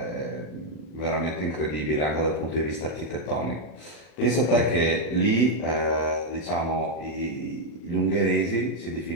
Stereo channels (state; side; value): late; right; 39 ms